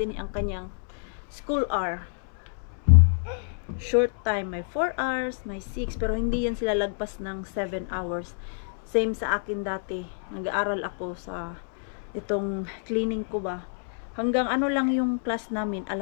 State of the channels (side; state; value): right; silent; 60 dB below the other